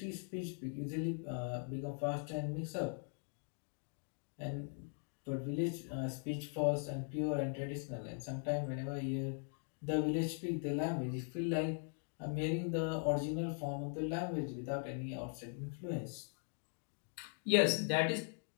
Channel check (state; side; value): silent; right; 51 dB below the other